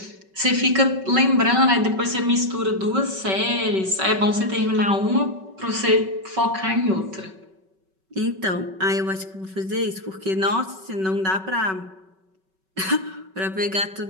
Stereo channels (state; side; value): late; left; 5.3 ms